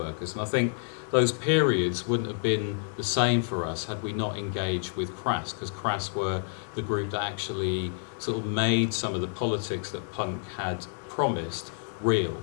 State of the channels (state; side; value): silent; right; digital silence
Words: And I think those periods wouldn't have been the same for us had we not engaged with Crass, because Crass were the group that actually sort of made some of the politics that punk had promised real,